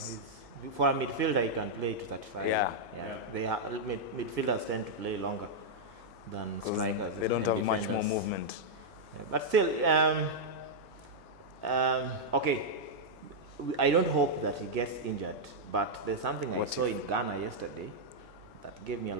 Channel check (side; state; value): right; noise; hum, 25 dB below the sound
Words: For a midfielder, he can play to 35. Yeah. Midfielders tend to play longer than strikers. They don't and have defenders. much more movement. Yeah, but still, okay. I don't hope that he gets injured, but there's something I saw in Ghana yesterday that gave me a